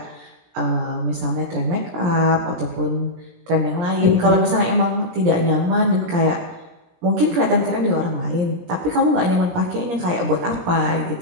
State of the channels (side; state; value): left; late; 17 ms